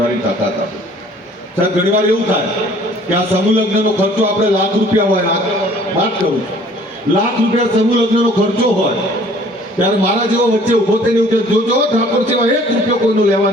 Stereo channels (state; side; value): normal; both; correlation 0.54